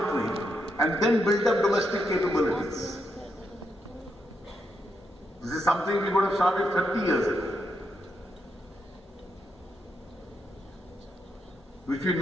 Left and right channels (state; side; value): normal; both; correlation 0.81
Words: and then build up domestic capabilities. This is something we would have started 30 years ago, which we